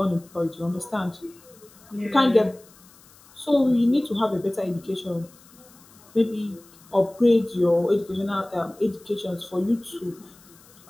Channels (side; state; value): left; noise; hiss, 26 dB below the sound